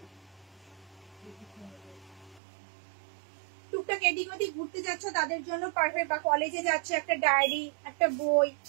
টুকটাক এদিক ওদিক ঘুরতে যাচ্ছ তাদের জন্য পারফেক্ট, বা কলেজে যাচ্ছ, একটা ডায়েরি, একটা বই,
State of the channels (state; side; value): drops out; left; at 2.4 s